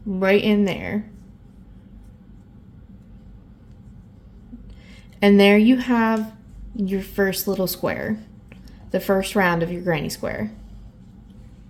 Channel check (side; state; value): both; identical; correlation 1.00